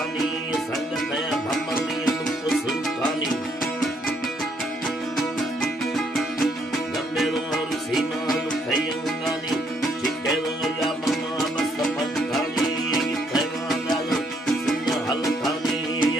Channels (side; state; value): both; normal; correlation 0.70